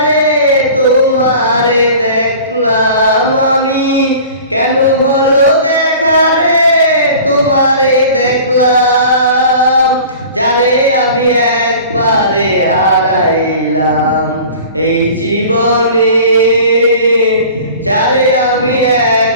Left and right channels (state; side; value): inverted; both; correlation -0.43